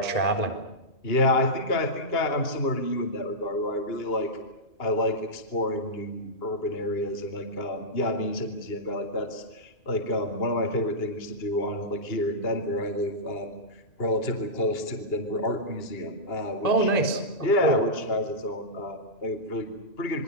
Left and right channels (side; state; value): right; late; 2.8 ms